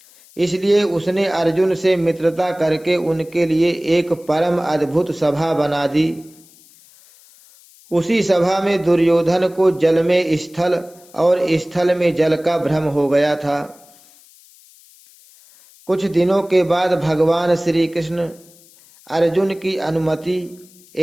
इसलिए उसने अर्जुन से मित्रता करके उनके लिए एक परम अद्भुत सभा बना दी। उसी सभा में दुर्योधन को जल में स्थल और स्थल में जल का भ्रम हो गया था। कुछ दिनों के बाद भगवान श्री कृष्ण अर्जुन की अनुमति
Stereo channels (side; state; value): left; noise; hiss, 26 dB below the sound